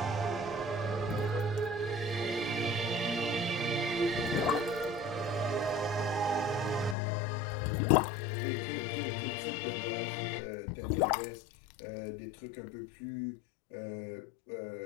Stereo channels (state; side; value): drops out; right; at 7.0 s